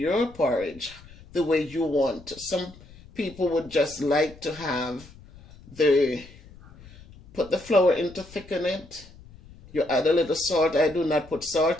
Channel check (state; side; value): noise; left; rumble, 21 dB below the sound